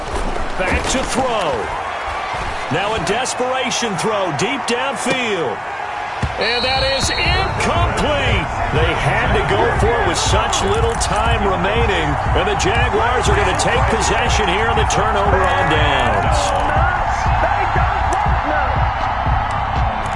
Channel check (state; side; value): identical; both; correlation 1.00